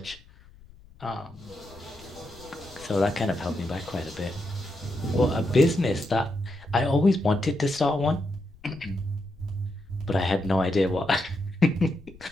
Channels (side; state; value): left; noise; rumble, 23 dB below the sound